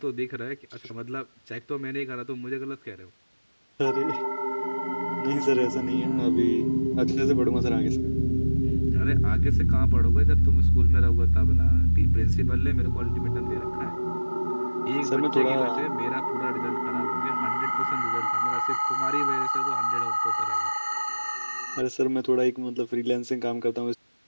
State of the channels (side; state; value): both; inverted; correlation -1.00